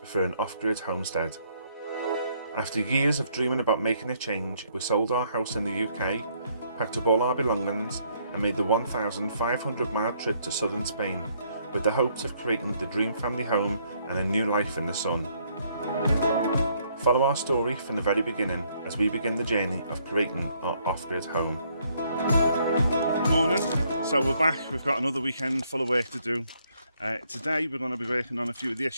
for an off-grid homestead. After years of dreaming about making a change, we sold our house in the UK, packed up all our belongings and made the 1,500-mile trip to southern Spain with the hopes of creating the dream family home and a new life in the sun. Follow our story from the very beginning as we begin the journey of creating our off-grid home. Morning, so we're back. We've got another weekend full of work to do. Today we're going to be working on a few of the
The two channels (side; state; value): both; inverted; correlation -0.69